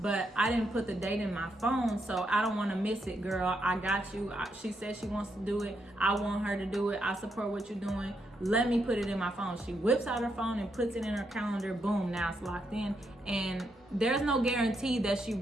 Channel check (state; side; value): normal; both; correlation 0.80